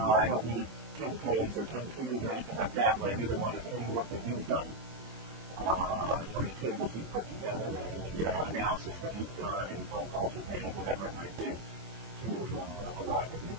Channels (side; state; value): left; late; 25 ms